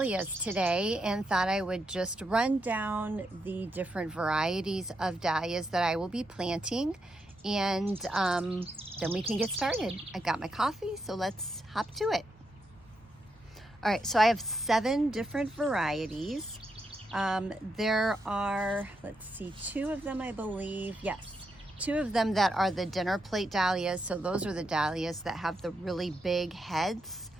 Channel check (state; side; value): normal; both; correlation 0.82